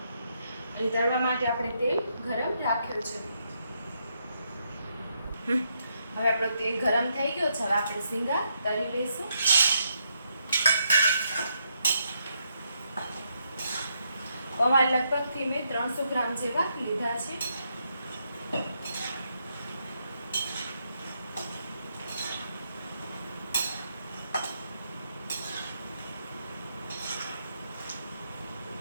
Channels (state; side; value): inverted; both; correlation -0.78